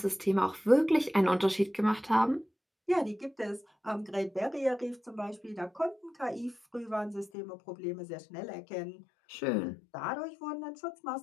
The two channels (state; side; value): drops out; right; at 7.3 s